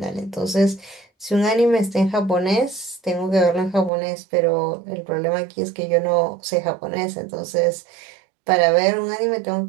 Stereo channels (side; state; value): left; drops out; at 3.9 s